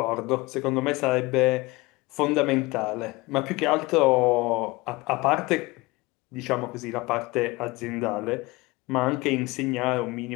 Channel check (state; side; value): quieter; right; 22.7 dB